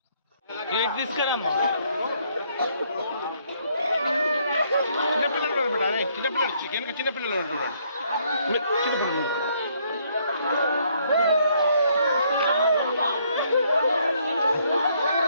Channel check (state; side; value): inverted; both; correlation -0.68